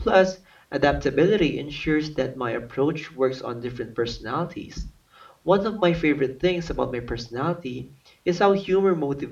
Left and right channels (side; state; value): both; identical; correlation 1.00